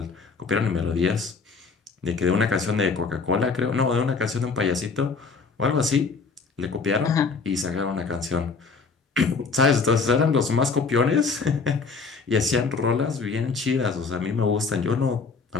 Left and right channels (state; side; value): quieter; right; 4.6 dB